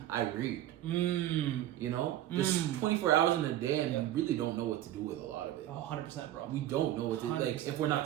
I read. You know, there's 24 hours in a day, and we really don't know what to do with a lot of it. 100%, bro. We don't know what to do. Like if we're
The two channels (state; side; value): quieter; left; 13.1 dB